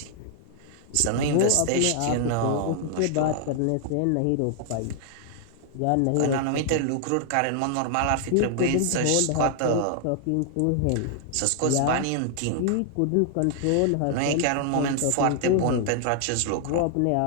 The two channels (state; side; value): different; both; correlation 0.00